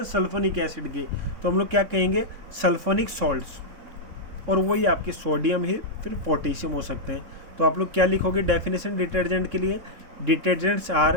सल्फोनिक एसिड के। तो हम लोग क्या कहेंगे? Sulphonic salts. और वही आपके सोडियम ही फिर पोटेशियम हो सकते हैं। तो आप लोग क्या लिखोगे डेफिनेशन डिटर्जेंट के लिए? Detergents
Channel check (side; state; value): left; late; 3.6 ms